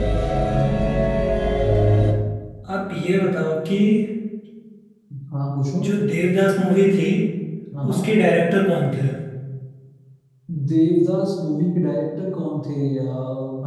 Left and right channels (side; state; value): both; identical; correlation 1.00